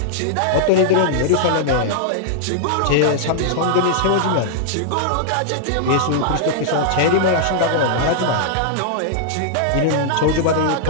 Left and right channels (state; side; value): different; both; correlation -0.01